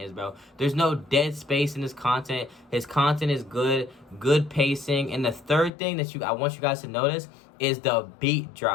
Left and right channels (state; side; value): drops out; right; at 5.7 s